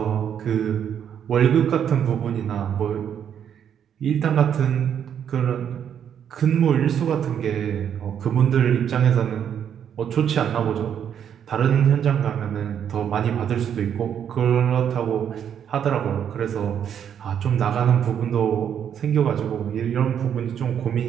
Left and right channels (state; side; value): quieter; left; 8.8 dB